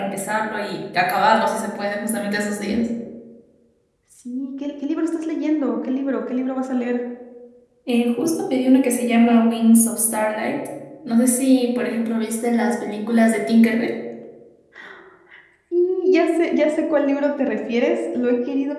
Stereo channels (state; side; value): identical; both; correlation 1.00